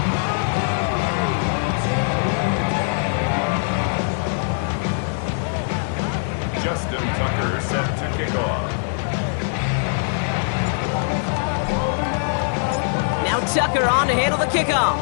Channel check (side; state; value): right; silent; 64 dB below the other